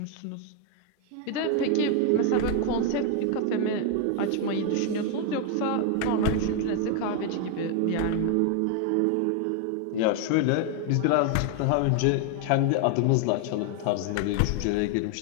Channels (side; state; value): both; different; correlation 0.00